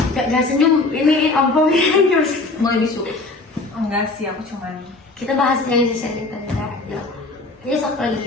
Gak senyum, ini apa terus? Mulai bisu. Enggak sih, aku cuman Kita bahas yang si sharing tadi ya. Ini sok lagi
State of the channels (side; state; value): right; quieter; 3.3 dB